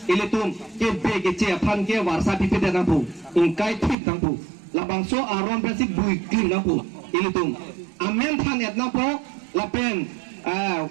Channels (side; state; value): left; drops out; at 4.0 s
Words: ile tum ke be ke ce phan ke warsa pipete nang pu ingkai thip nang pu labangso aron pensi bui clean napo ilitum amen than et napo lapen